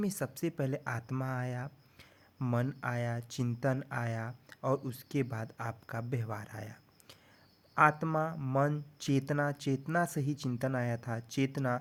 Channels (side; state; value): both; identical; correlation 1.00